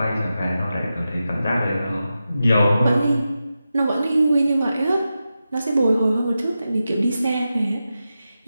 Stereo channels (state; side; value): inverted; both; correlation -0.91